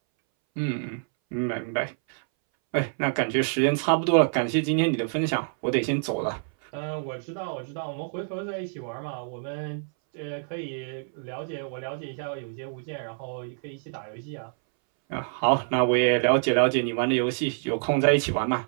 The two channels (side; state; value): left; silent; 60 dB below the other